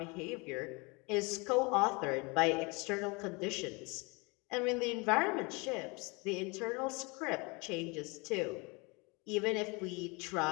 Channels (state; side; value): quieter; right; 28.2 dB